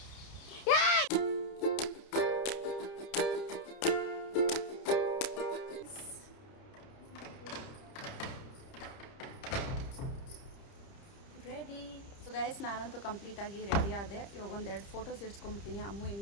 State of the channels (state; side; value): late; right; 30 ms